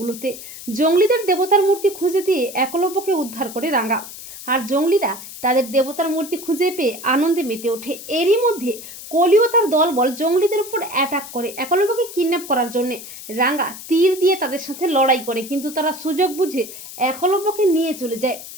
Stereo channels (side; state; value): left; noise; hiss, 13 dB below the sound